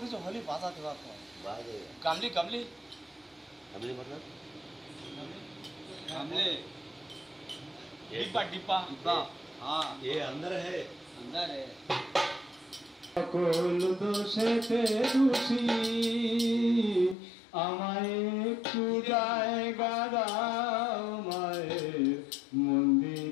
কিছু হলে বাজাতে পারতো। बाजे গামলি গামলি हमले मतलब গামলে ये डिब्बा डिब्बा डिब्बा। हाँ ये अंदर है अंदर है। সকল দোষেতে দোষী আমায় একটু জায়গা দাও মায়ের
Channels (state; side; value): drops out; right; at 17.2 s